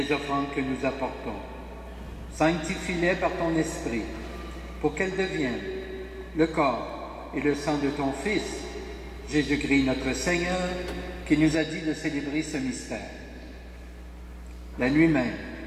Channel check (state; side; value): identical; both; correlation 1.00